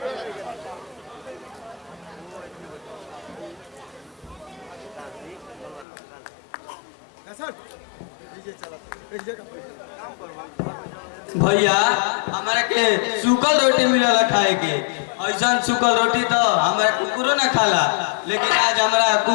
भैया हमारा के सूखल रोटी मिलला खाए के, ऐसा सूखल रोटी तो हमारा कुकुरो ना खाला, लेकिन आज हमारा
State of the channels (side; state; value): right; drops out; at 5.9 s